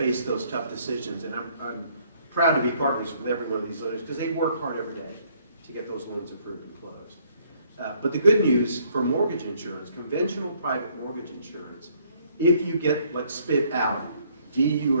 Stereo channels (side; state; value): both; inverted; correlation -0.65